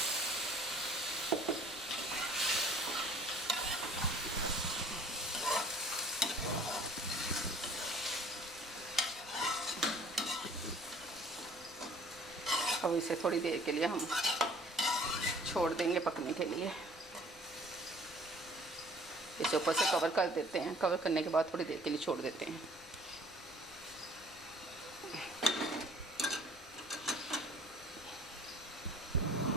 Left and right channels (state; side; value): normal; both; correlation 0.52